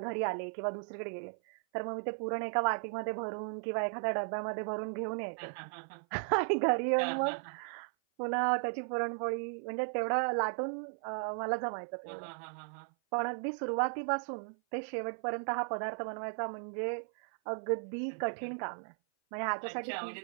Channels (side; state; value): left; silent; 54 dB below the other